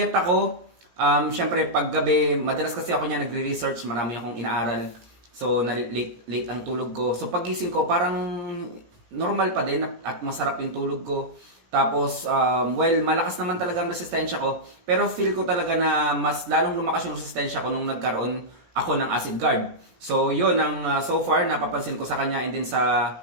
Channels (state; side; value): late; left; 17 ms